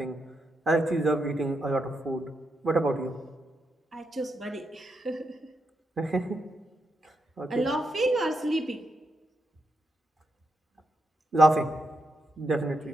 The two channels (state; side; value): normal; both; correlation 0.83